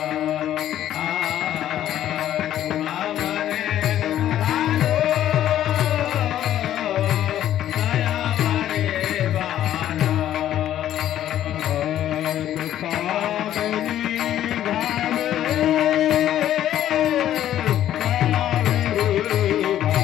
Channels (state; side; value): quieter; right; 11.8 dB